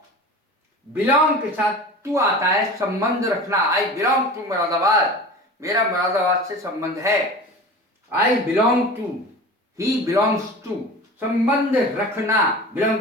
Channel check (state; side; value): normal; both; correlation 0.36